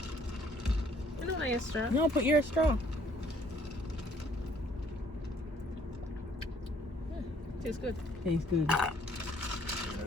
I don't like a straw. No, put your straw. Tastes good. Tastes good.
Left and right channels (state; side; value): normal; both; correlation 0.61